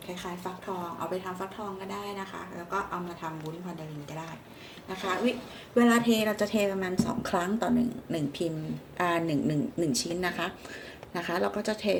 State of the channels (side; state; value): both; identical; correlation 1.00